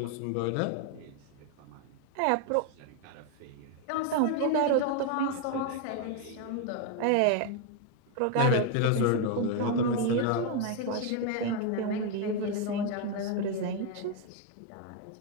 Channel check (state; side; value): different; both; correlation 0.01